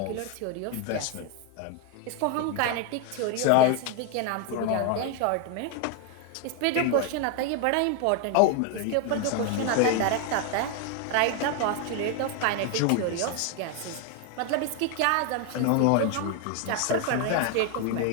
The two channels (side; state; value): both; different; correlation 0.01